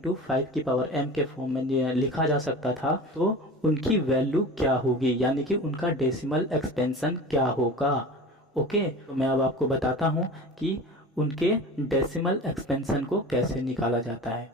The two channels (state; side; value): normal; both; correlation 0.35